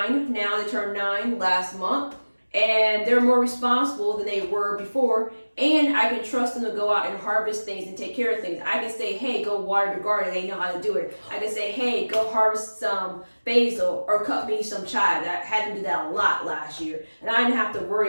now, they turned 9 last month. And they're more responsible than they were before. And I can trust them to go out and harvest things and take care of things. I can say, hey, go water the garden. They know how to do it. I can say, hey, go harvest some basil or cut me some chive. I had them do that a lot last year. And I didn't have to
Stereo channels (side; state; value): both; inverted; correlation -1.00